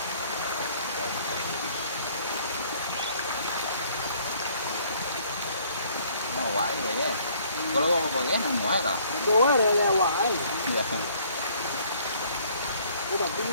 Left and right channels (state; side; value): inverted; both; correlation -0.60